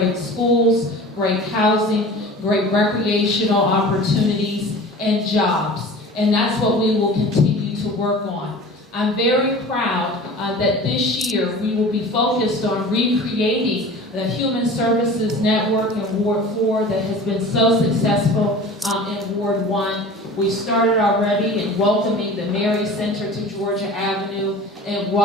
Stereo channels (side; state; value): both; normal; correlation 0.39